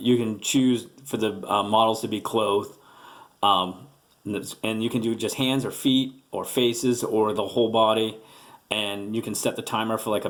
can choose for the models to be clothed, and you can do just hands or feet or faces or the whole body, and you can set the timer for like a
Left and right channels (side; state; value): both; identical; correlation 1.00